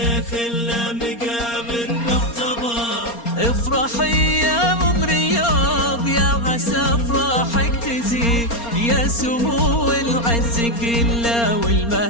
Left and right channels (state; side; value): late; right; 4.3 ms